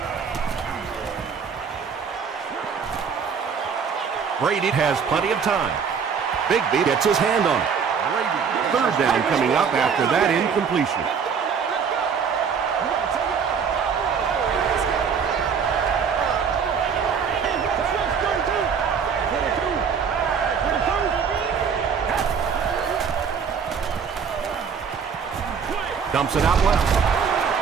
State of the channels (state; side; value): quieter; left; 6.5 dB